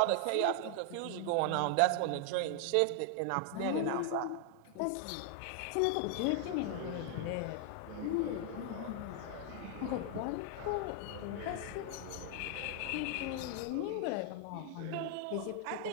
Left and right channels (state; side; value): different; both; correlation 0.00